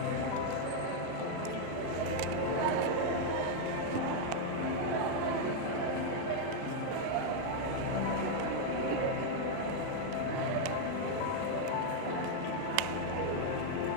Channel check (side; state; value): both; different; correlation 0.00